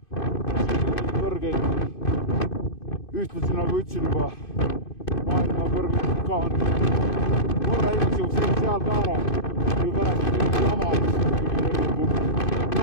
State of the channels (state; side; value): late; right; 2.5 ms